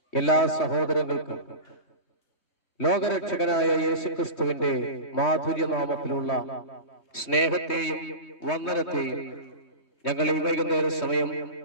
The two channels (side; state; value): right; late; 3.2 ms